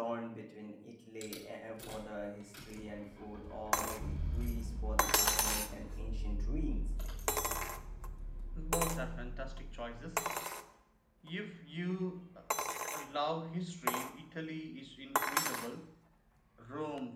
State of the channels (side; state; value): both; identical; correlation 1.00